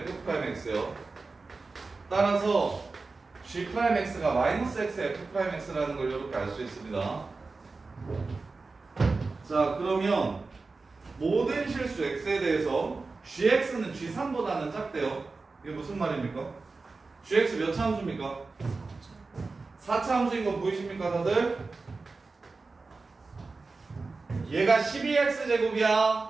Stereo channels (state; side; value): quieter; left; 3.9 dB